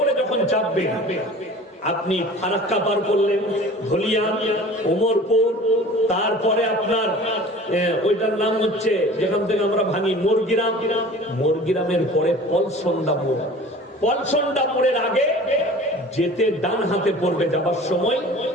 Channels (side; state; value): both; normal; correlation 0.42